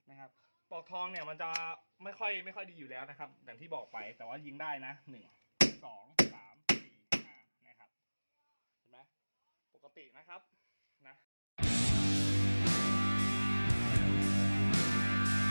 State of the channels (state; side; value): inverted; both; correlation -1.00